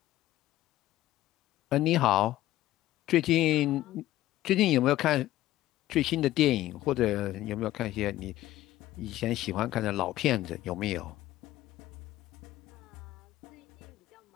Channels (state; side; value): quieter; right; 15.0 dB